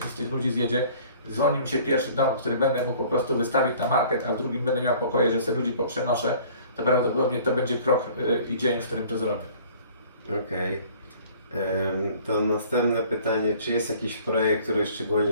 z tych ludzi zjedzie, dzwoni mi się pierwszy dom, który będę mógł po prostu wystawić na market, a w drugim będę miał pokoje, że sobie ludzi poprzenoszę, to prawdopodobnie to będzie krok i dzień, w którym to zrobię. Okej. To następne pytanie, czy jest jakiś projekt, który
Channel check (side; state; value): both; inverted; correlation -0.51